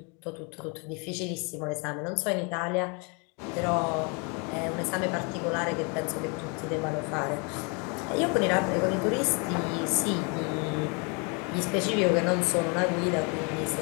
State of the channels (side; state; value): right; quieter; 33.3 dB